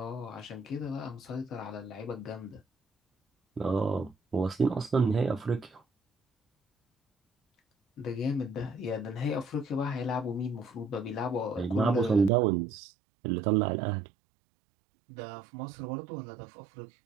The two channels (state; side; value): drops out; left; at 12.3 s